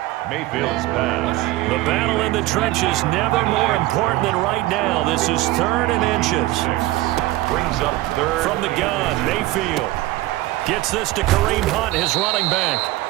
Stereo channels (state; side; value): quieter; left; 17.5 dB